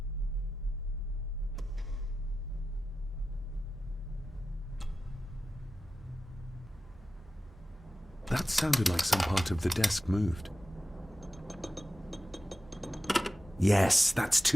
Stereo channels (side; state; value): both; normal; correlation 0.93